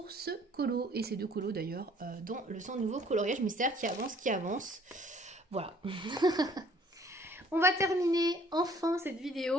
ce colo et ces deux colos d'ailleurs dans le centre nouveau coloriage mystère qui avance. Voilà. On va terminer enfin cette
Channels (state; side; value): normal; both; correlation 0.57